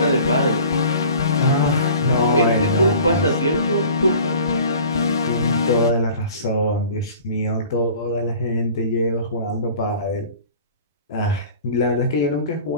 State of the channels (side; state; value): both; inverted; correlation -0.45